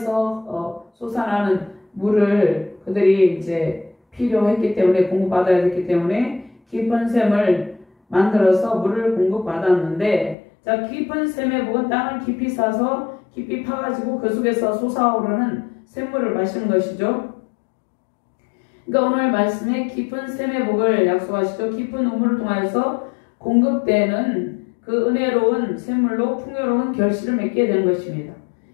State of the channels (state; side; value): drops out; right; at 10.4 s